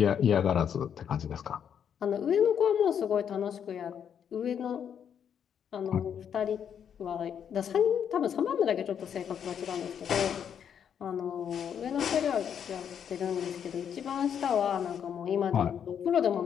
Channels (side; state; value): right; quieter; 8.3 dB